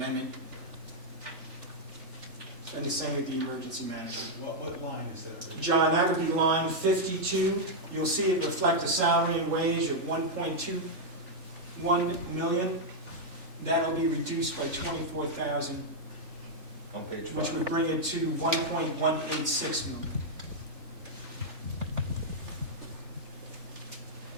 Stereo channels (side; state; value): left; late; 3.4 ms